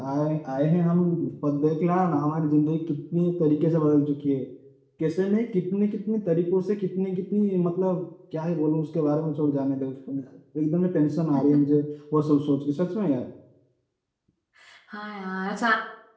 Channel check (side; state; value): both; identical; correlation 1.00